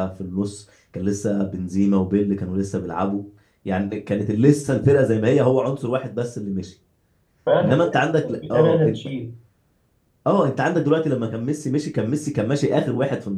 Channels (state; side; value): identical; both; correlation 1.00